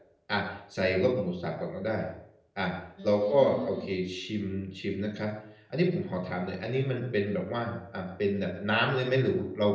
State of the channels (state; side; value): identical; both; correlation 1.00